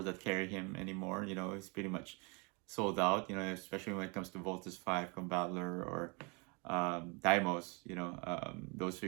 that carry him anymore. It's pretty much sold out, especially when it comes to Voltus 5, Combattler, or Daimos. Those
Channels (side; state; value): left; quieter; 31.5 dB